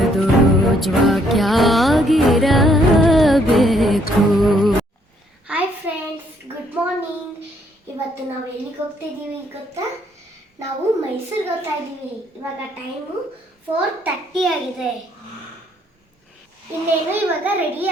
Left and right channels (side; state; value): both; normal; correlation 0.68